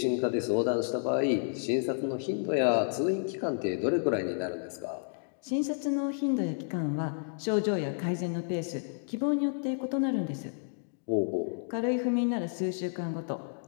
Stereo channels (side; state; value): right; silent; digital silence